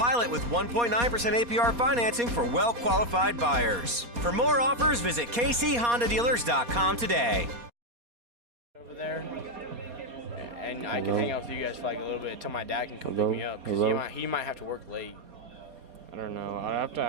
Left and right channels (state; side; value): late; left; 4.2 ms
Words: with 1.9% APR financing for well-qualified buyers. For more offers, visit kchondadealers.com today. Over there, and I can hang out with you guys for like a little bit until my dad can come pick me up, because he might have to work late. I don't know. I'd have to